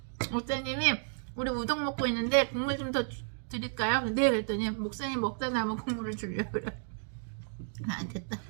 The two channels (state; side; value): silent; left; digital silence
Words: 목사님이 우리 우동 먹고 있는데 국물 좀 더 드릴까요? 네 그랬더니 목사님 먹다 하면 국물을 주려고 그래. 안 됐다.